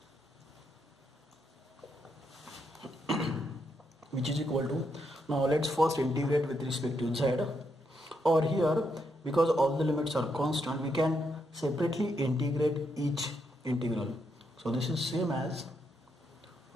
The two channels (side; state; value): both; normal; correlation 0.79